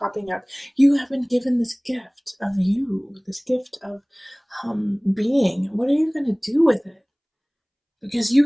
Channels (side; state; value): both; identical; correlation 1.00